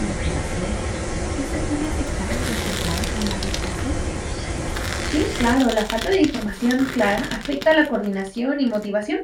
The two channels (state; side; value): identical; both; correlation 1.00